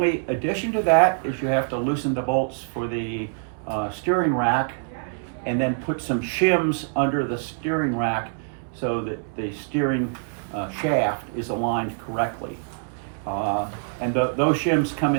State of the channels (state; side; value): silent; left; 62 dB below the other